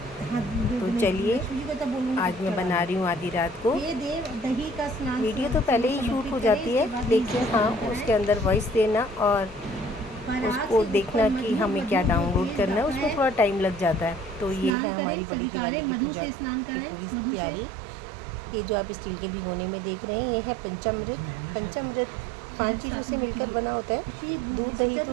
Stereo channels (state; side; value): drops out; left; at 14.7 s